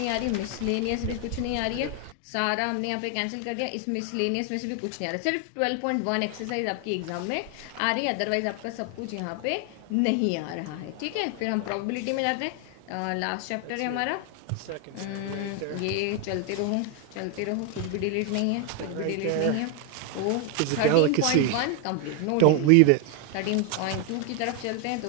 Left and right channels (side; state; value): both; different; correlation 0.01